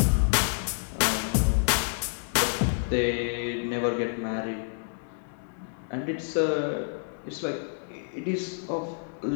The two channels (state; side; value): silent; right; digital silence